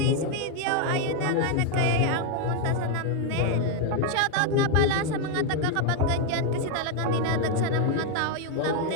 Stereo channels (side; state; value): both; different; correlation 0.01